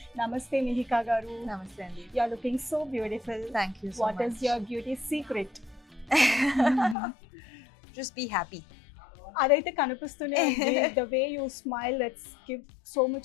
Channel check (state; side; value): drops out; right; at 7.0 s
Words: నమస్తే మిహికా గారు. నమస్తే అండి. You are looking so beautiful. Thank you so what much. Is your beauty secret? Just be happy. అదైతే కనిపిస్తూనే ఉంది. The way you smile let's give so